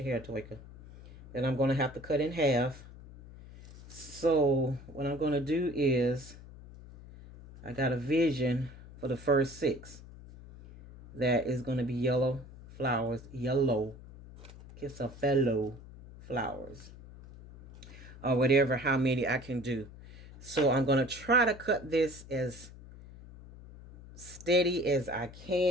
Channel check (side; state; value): left; noise; hum, 17 dB below the sound